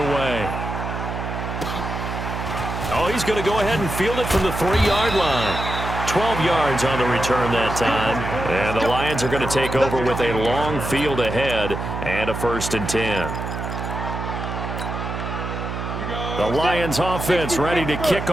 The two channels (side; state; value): right; noise; hum, 5 dB below the sound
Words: Oh, he's going to go ahead and field it from the 3-yard line. 12 yards on the return that time. And the Lions are going to take over with a long field ahead and a 1st and 10. The Lions offense ready to kick